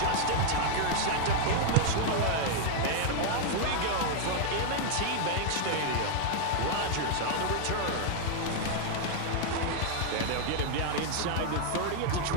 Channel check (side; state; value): both; different; correlation 0.00